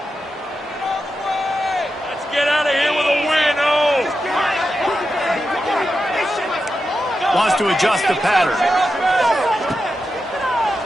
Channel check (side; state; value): both; normal; correlation 0.89